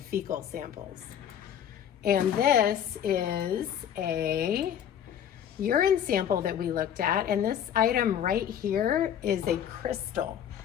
samples. And this is a urine sample that we looked at. And this item right here is a crystal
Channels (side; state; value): right; quieter; 9.6 dB